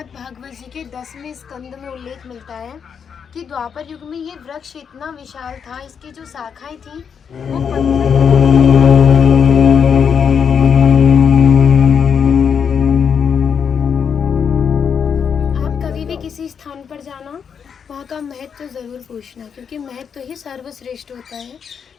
भागवत जी के 10वें स्कंद में उल्लेख मिलता है कि द्वापर युग में ये वृक्ष इतना विशाल था, इसकी जो शाखाएं थी वो आप कभी भी किसी स्थान पर जाना, वहाँ का महत्व तो ज़रूर पूछना, क्योंकि महत्व ही सर्वश्रेष्ठ होता है।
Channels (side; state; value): right; quieter; 7.0 dB